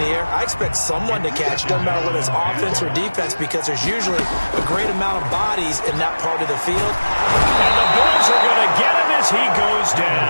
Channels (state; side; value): inverted; both; correlation -1.00